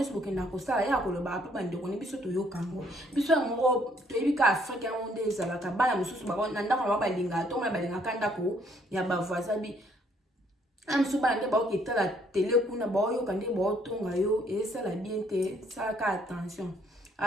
soboke na ko sala ya ko lo ba pa bande ko ne biso to yo kango biso moko to ebika Afrique monde ezalaka bana mususu ba na ndako ba balinga to ma balinga kanda ko ya ba voisin bi amsu ba nde ba o kitala télé kuna ba yo kande ba o tonga yo et ça la bien te ça ka attention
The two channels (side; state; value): both; normal; correlation 0.66